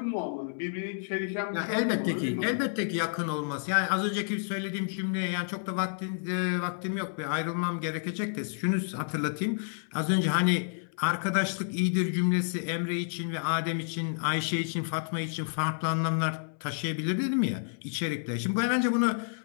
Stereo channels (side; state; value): right; silent; 58 dB below the other